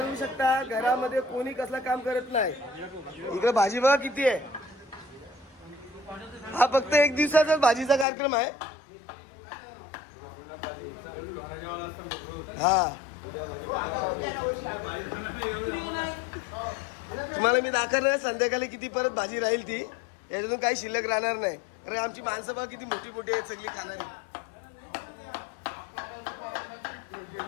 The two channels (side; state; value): right; drops out; at 8.1 s